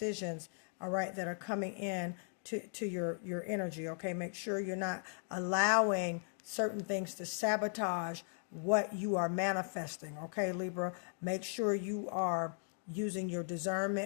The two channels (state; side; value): silent; right; 53 dB below the other